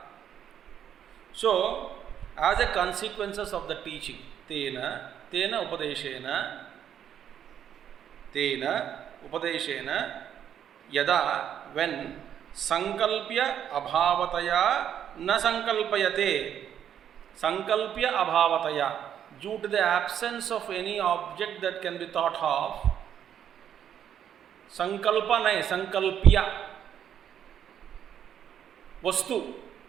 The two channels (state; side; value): quieter; left; 9.4 dB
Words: So as a consequences of the teaching, tena upadeshena yada, when sankalpya abhavataya na sankalpayate, sankalpya abhavataya, due to the absence of any object that can be thought of, sankalpa nahi, sankalpya, वस्तु